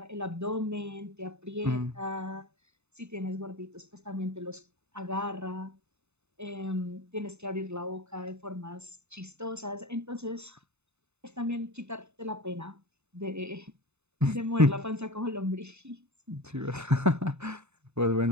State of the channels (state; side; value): late; left; 0.81 ms